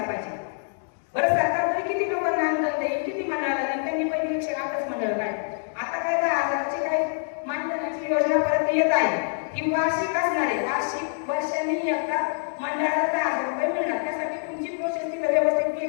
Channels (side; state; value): right; silent; digital silence